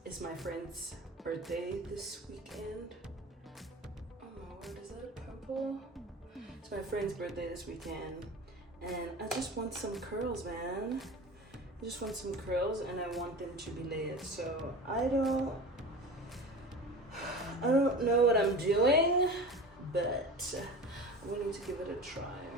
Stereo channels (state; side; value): normal; both; correlation 0.34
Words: It's my friend's birthday this weekend. Oh my word, is that a purple? It's my friend's birthday this weekend, and I just want some curls, man. I just want some curls, and I want them to be layered. So I don't know what I'm doing, but I'm willing to give it a try.